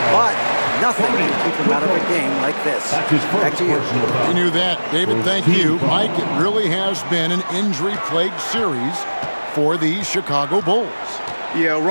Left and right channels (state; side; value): inverted; both; correlation -1.00